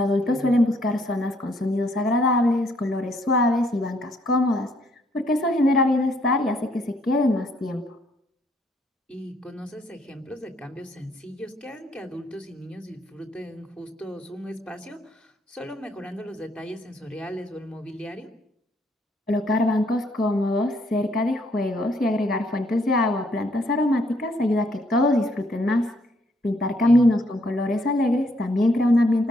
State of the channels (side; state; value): both; normal; correlation 0.69